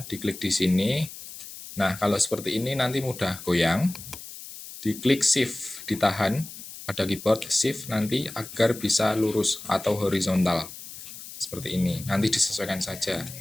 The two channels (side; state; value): left; noise; hiss, 13 dB below the sound